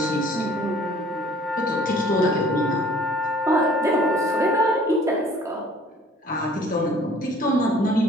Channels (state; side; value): normal; both; correlation 0.53